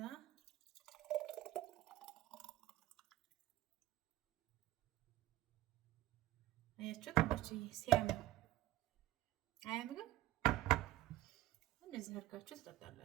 አያችሁ ታች ሲያምር አያምርም? እንደዚህ አድርጋችሁ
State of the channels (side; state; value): left; quieter; 15.3 dB